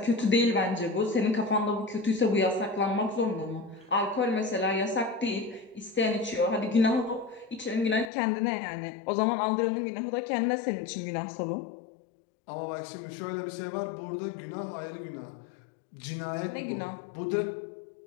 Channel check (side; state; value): right; drops out; at 8.1 s